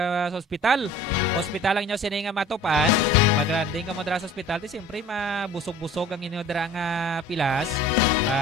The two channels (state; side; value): normal; both; correlation 0.46